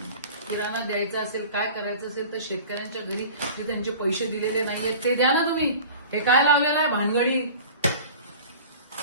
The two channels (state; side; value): inverted; both; correlation -0.41